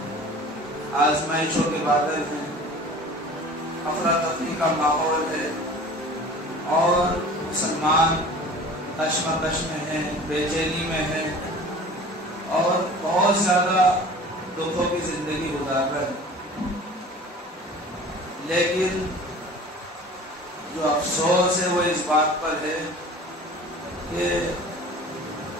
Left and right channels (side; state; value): both; normal; correlation 0.42